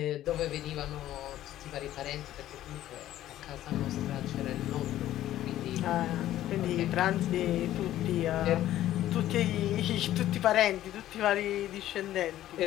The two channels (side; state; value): right; quieter; 13.3 dB